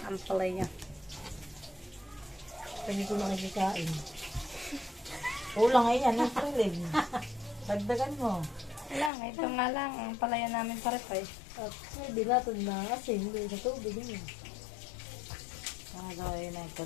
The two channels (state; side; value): drops out; right; at 9.1 s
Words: ampalaya. Hindi ko nakikikain. Kulang ay yan, ang tulig. Dagdagan mo. Lang, ito nga lang. Ang ampalaya namin parepay. At hindi natin na kasi hindi sa tubig yun. Gawin na yung